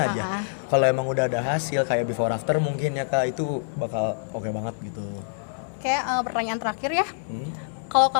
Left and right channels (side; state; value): right; silent; 61 dB below the other